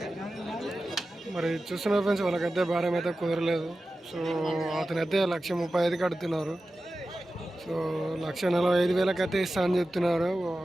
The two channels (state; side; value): normal; both; correlation 0.94